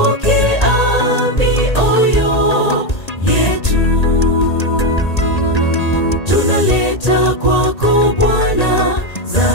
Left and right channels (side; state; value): right; late; 1.8 ms